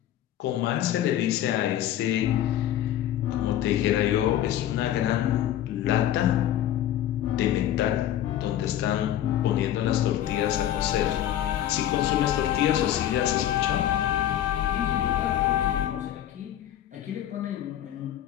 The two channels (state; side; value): quieter; right; 11.9 dB